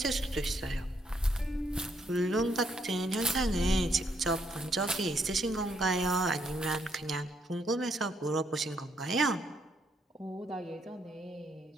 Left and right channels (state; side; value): normal; both; correlation 0.73